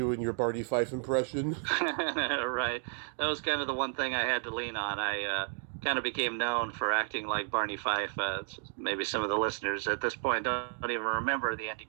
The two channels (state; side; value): silent; left; 56 dB below the other